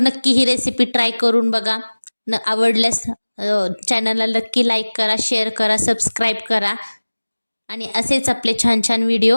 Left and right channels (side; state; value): both; inverted; correlation -1.00